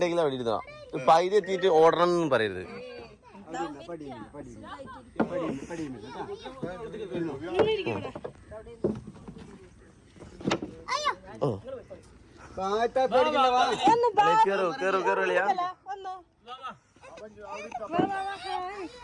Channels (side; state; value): both; identical; correlation 1.00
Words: അവിടെ ഇരുന്നോ. പൈതി എത്തിയിട്ട് ഓടണം എന്നൊന്നും പറയരുത്. ഓ കേറോ കേറോ കേറോളിയാ.